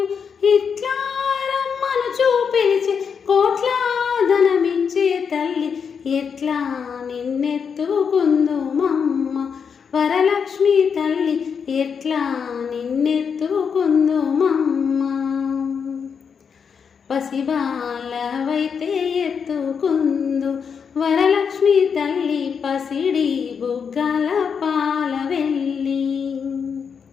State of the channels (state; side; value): quieter; right; 6.5 dB